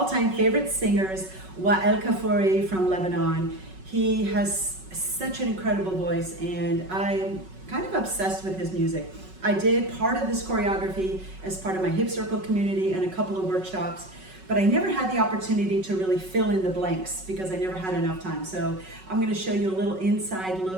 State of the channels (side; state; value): left; late; 5.4 ms